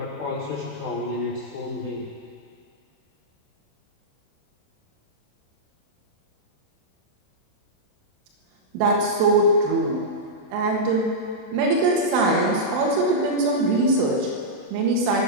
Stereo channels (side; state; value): left; late; 28 ms